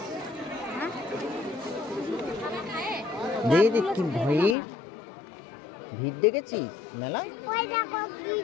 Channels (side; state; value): right; drops out; at 4.5 s